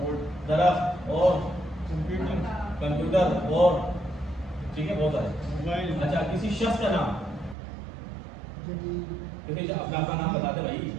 درخت اور کمپیوٹر اور ٹھیک ہے بہت سارے اچھا کسی شخص کا نام کسی اپنا نام بتا دیں بھائی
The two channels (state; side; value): drops out; left; at 7.6 s